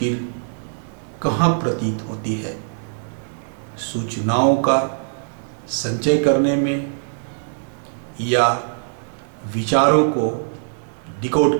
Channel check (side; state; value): left; silent; digital silence